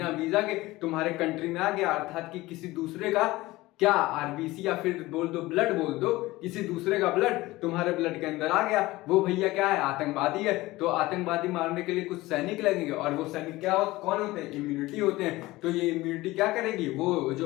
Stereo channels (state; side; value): quieter; right; 19.1 dB